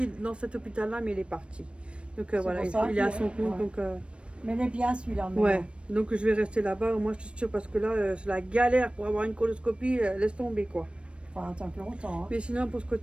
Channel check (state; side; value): late; left; 0.059 ms